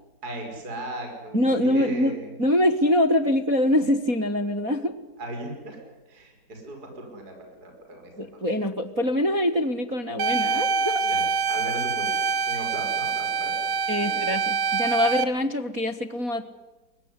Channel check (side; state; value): left; late; 4.2 ms